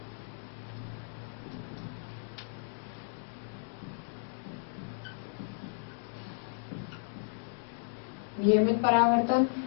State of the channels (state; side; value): silent; right; digital silence